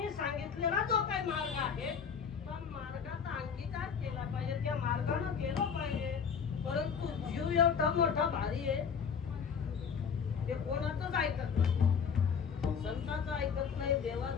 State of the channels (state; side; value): quieter; right; 6.6 dB